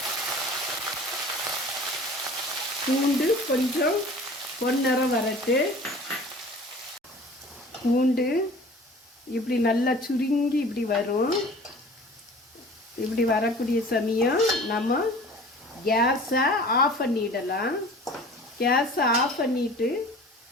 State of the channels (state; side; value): normal; both; correlation 0.44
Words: பூண்டு கொஞ்சம் பொன்னிறம் வரட்டு. பூண்டு இப்படி நல்லா சுருங்கி இப்படி வரும். இப்படி வரக்கூடிய சமயம் நம்ம கேஸை ஆஃப் பண்ணிடலாம். கேஸை ஆஃப் பண்ணிவிட்டு